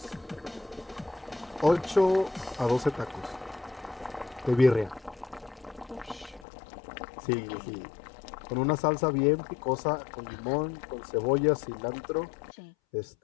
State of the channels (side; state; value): right; drops out; at 6.5 s